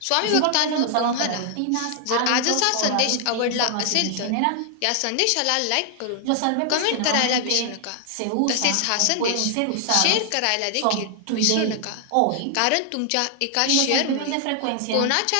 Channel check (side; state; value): both; different; correlation 0.00